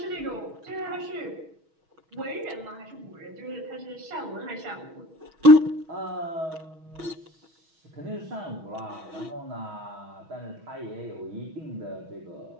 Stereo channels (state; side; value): late; left; 6.2 ms